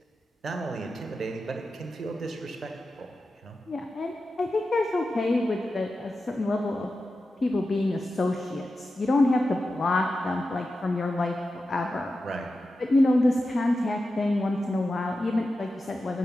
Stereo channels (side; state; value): both; normal; correlation 0.91